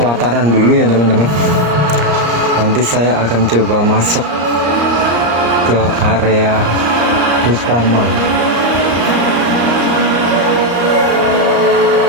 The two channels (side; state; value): left; late; 34 ms